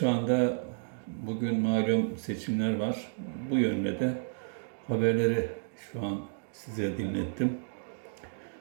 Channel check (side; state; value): left; silent; digital silence